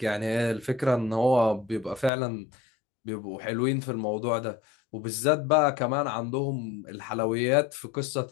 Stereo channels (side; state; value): right; drops out; at 2.1 s